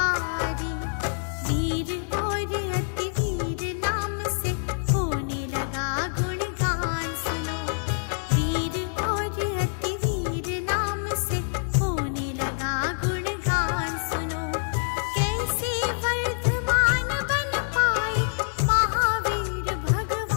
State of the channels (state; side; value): silent; right; digital silence